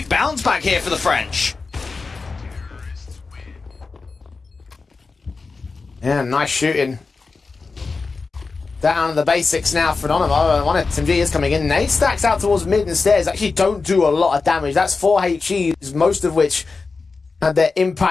bounce back here for the French. Yeah, nice shooting. Down to the basics now for Anonymous. One SMG is coming in. Nade stacks out towards mid and stairs. Actually don't do a lot of damage. That's 4 HEs, most of which had their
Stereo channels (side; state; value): right; quieter; 4.3 dB